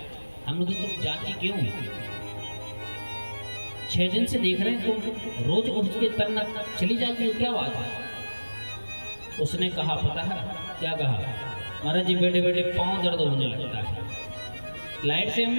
हम लोग तुम जाती क्यों? 6 दिन से देख रहे हैं तुम रोज उठ के तरना चली जाती हो, क्या बात है? उसने कहा पता है क्या कहा? महाराज जी बैठे बैठे पाँव दर्द होने लगता है। लाइट से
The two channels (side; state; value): both; inverted; correlation -1.00